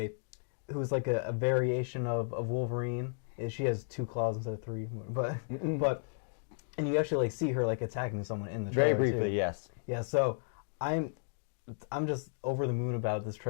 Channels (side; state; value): right; silent; digital silence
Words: like a variation of Wolverine. She has 2 claws instead of 3, but and you actually like see her like attacking someone in the trailer very briefly, too. yes. Yeah, so I'm just over the moon about this